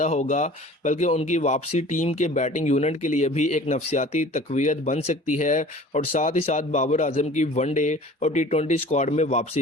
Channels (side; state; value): both; normal; correlation 0.45